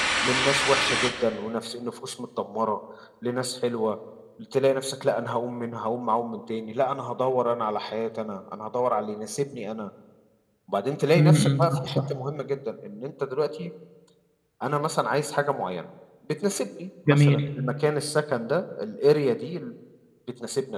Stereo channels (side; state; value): both; identical; correlation 1.00